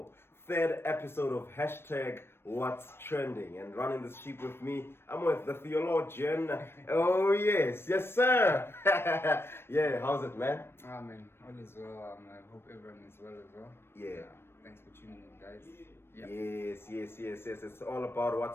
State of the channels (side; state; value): right; late; 0.12 ms